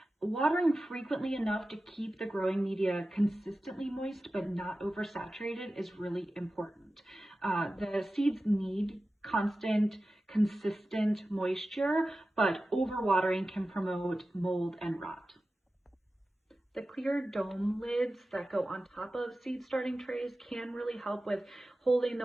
Watering frequently enough to keep the growing media consistently moist but not oversaturated is really important. The seeds need constant, consistent moisture, but overwatering can promote mold and rot. The clear dome lids that go on top of seed starting trays can really help with holding the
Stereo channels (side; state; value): both; normal; correlation 0.94